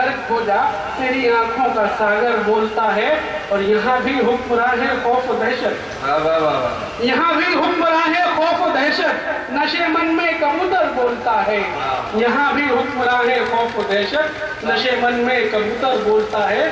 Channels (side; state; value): both; identical; correlation 1.00